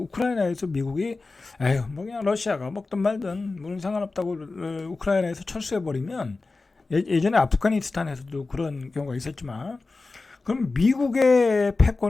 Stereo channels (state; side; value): quieter; right; 3.7 dB